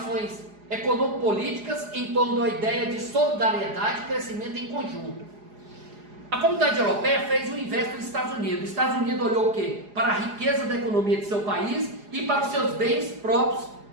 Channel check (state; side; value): late; left; 4.8 ms